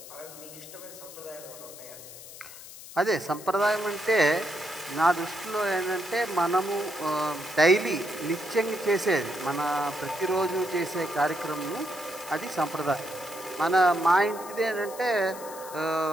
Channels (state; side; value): noise; left; hiss, 15 dB below the sound